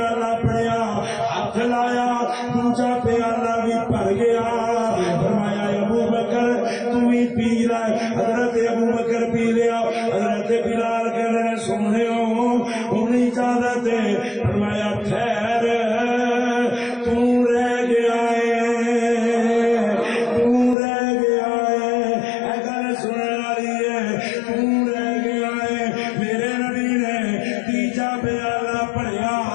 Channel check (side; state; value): right; drops out; at 20.8 s